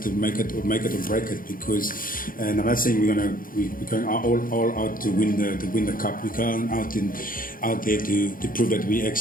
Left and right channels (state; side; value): late; right; 0.41 ms